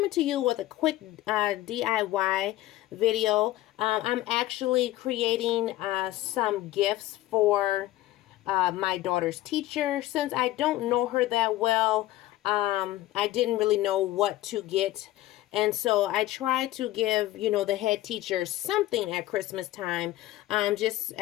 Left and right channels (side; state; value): right; quieter; 15.7 dB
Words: to you with a quick DIY video. I'm actually creating some gifts for my daughter's teacher. Since I don't know her that well, I didn't really know what to get. And so I try to give, the head teacher something at Christmas time, just